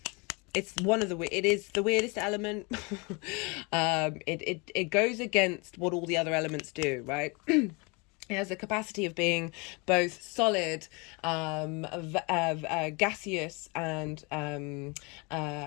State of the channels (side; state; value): right; quieter; 29.6 dB